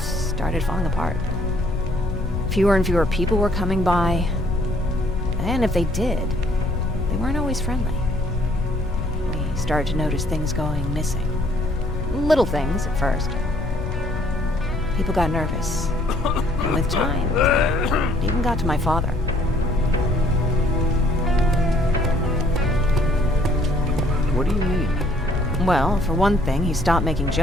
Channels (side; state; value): left; noise; rumble, 4 dB below the sound